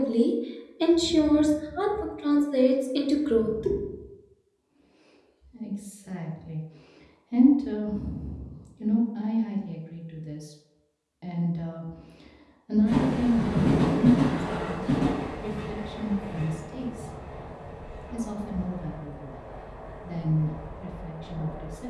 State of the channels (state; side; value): identical; both; correlation 1.00